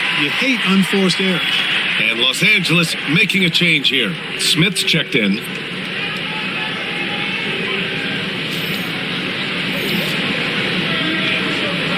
You hate unforced errors. And Los Angeles making a change here. Smith's checked in.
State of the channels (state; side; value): identical; both; correlation 1.00